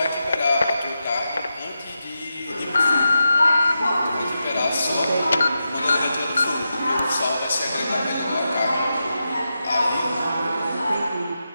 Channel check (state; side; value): inverted; both; correlation -0.88